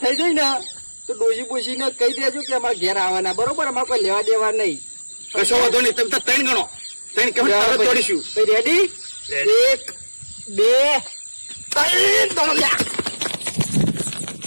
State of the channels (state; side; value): inverted; both; correlation -1.00